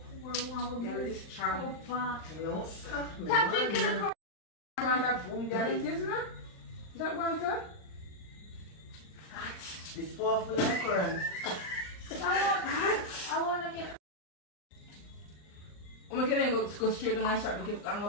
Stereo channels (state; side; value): late; right; 39 ms